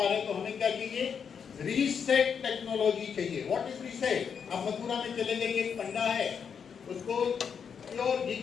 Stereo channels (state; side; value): quieter; right; 6.9 dB